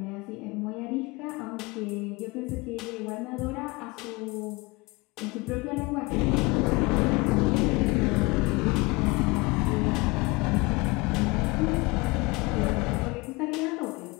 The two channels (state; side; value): quieter; right; 25.0 dB